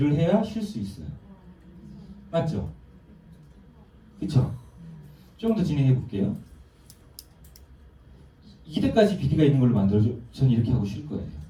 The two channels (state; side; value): identical; both; correlation 1.00